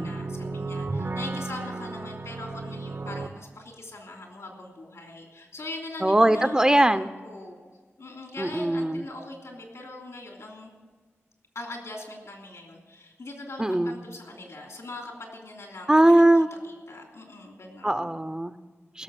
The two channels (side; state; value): both; normal; correlation 0.96